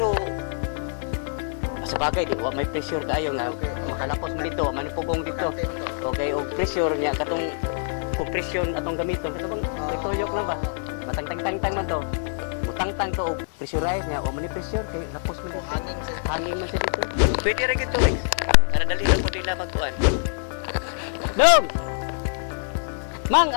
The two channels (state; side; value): silent; right; 62 dB below the other